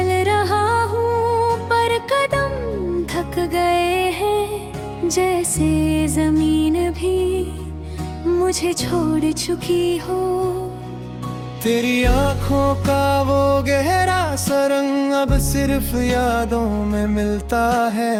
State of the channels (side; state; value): both; identical; correlation 1.00